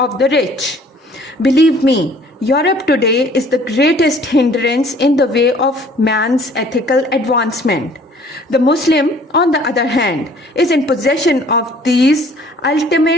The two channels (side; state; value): both; normal; correlation 0.55